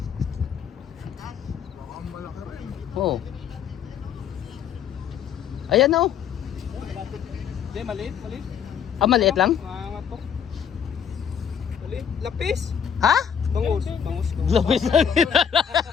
Oo. Ayan na oh. Hindi, maliit. Ah, maliit lang? Maangat to. Maliit. Lapis. Ha? Bangus. Lapis lang.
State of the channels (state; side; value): quieter; right; 8.0 dB